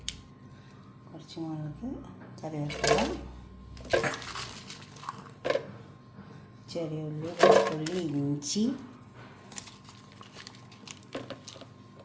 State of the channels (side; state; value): both; identical; correlation 1.00